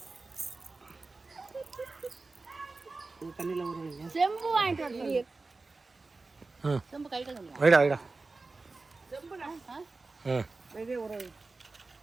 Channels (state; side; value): quieter; left; 3.7 dB